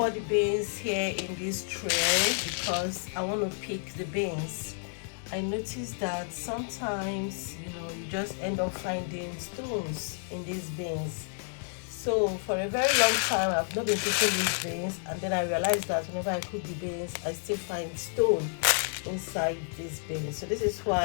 the beans here in this tray because I want to pick the beans. I noticed that sometimes, you just end up finding stones in these beans. So for a very long time, I've not been picking these beans, and then I realized that whenever I cook the beans, I still find stone inside these beans. So this is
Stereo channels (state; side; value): silent; right; digital silence